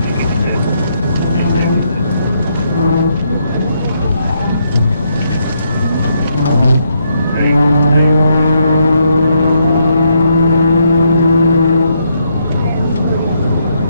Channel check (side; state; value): both; inverted; correlation -0.76